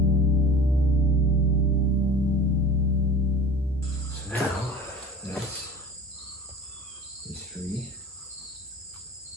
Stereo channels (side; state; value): both; normal; correlation 0.39